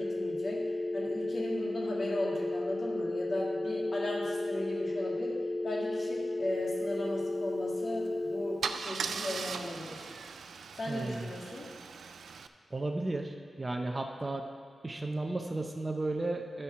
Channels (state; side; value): normal; both; correlation 0.94